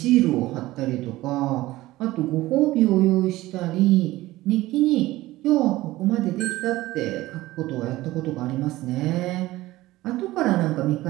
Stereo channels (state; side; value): quieter; left; 17.5 dB